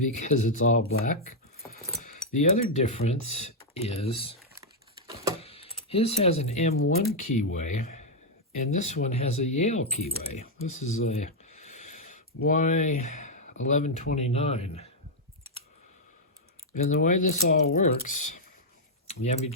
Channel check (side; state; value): both; normal; correlation -0.02